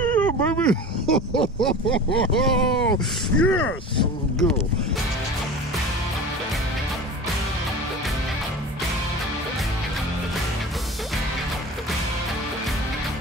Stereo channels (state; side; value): normal; both; correlation 0.35